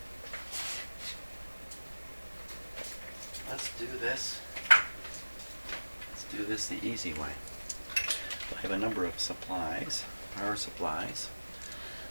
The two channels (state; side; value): inverted; both; correlation -1.00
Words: Let's do this. Let's do this the easy way. I have a number of supplies, power supplies,